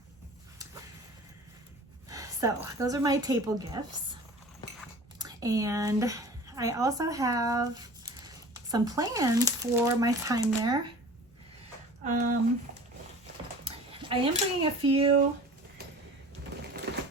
So those are my table gifts. And I also have some plans for my time there. I am bringing a few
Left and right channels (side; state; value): both; normal; correlation 0.41